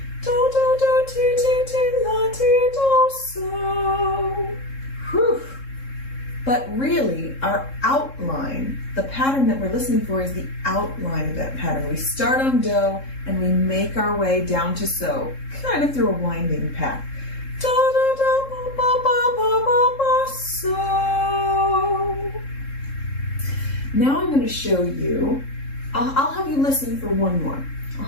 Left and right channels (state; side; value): late; right; 3.7 ms